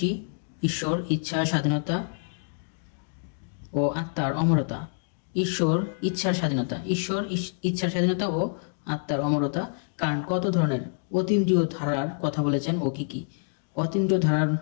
ঈশ্বর, ইচ্ছা, স্বাধীনতা ও আত্মার অমরতা। ঈশ্বর, ইচ্ছার স্বাধীনতা, ঈশ্বর, ইচ্ছার স্বাধীনতা ও আত্মার অমরতা। কান্ট কত ধরনের অতীন্দ্রিয় ধারার কথা বলেছেন ও কি কি? অতীন্দ্রিয় ধারার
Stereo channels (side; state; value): right; silent; digital silence